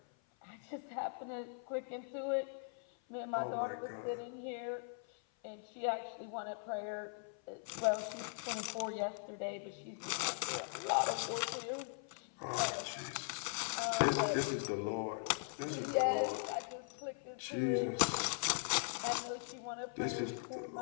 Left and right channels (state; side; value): silent; right; 51 dB below the other